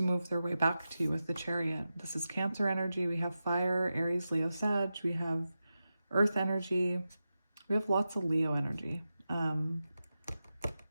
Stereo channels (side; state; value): both; inverted; correlation -0.91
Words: move their way back to you with the Chariot. This is Cancer energy. We have fire, Aries, Leo, Sag. We have earth energy. We have lots of Leo energy.